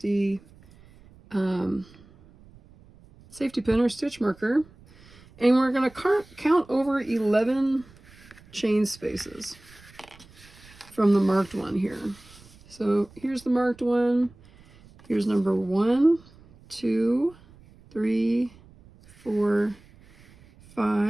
safety pin or stitch marker, and we're going to count over 11 chain spaces from the marked one here. So here's the marked one. Here's number 1, 2, 3, 4,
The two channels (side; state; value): right; noise; rumble, 25 dB below the sound